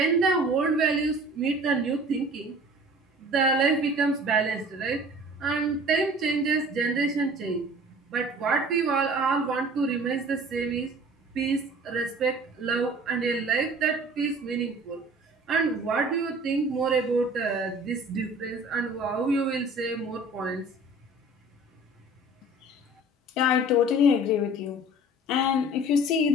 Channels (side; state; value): both; normal; correlation 0.46